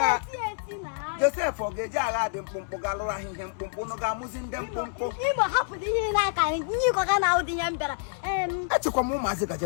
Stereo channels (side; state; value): right; silent; 60 dB below the other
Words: Joseph ogeje agha dị mkpụmkpụ ga-alụrụ ahịhịa mkpụmkpụ nọ ga-amụzi ndị mkpụmkpụ. Imo hapụrụ ihe n'aka nyiko ga na ụdị ya mbara. Achịkwa m ụmụazị